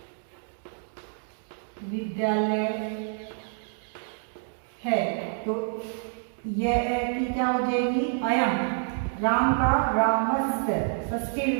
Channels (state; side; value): silent; left; digital silence